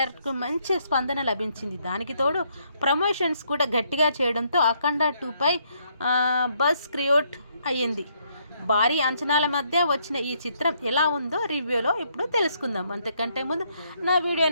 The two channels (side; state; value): both; inverted; correlation -0.72